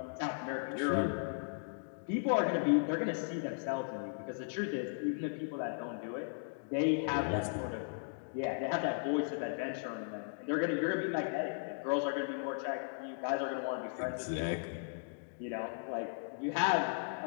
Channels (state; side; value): silent; right; digital silence